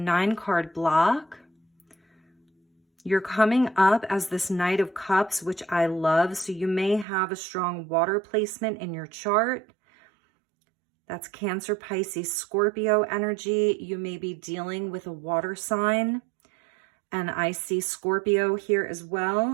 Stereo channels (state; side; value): drops out; left; at 7.1 s